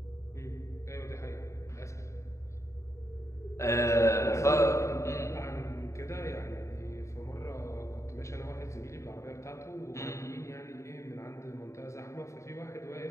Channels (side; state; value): right; late; 0.14 ms